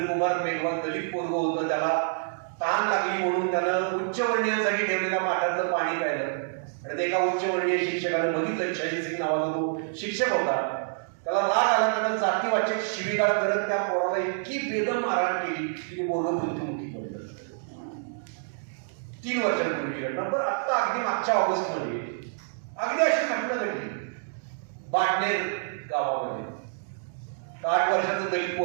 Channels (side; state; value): left; silent; digital silence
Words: मेघवाल, दलित पोरग होतं. त्याला तहान लागली म्हणून त्यानं उच्चवर्णीयांसाठी ठेवलेल्या माठातलं पाणी प्यायलं आणि ते एका उच्चवर्णीय शिक्षकाने बघितलं. शशी सिंग नावाचा तो शिक्षक होता. त्याला राग आला, त्यानं जातीवाचक शिवीगाळ करत त्या पोराला इतकी बेदम मारहाण केली की ते पोरग मृत्युमुखी पडलं. 3 वर्षांपूर्वी घटना. पण आत्ता अगदी मागच्या ऑगस्ट मध्ये अगदी अशी घटना घडली बाटनेर गावामध्ये. 8 वर्षाचं दलित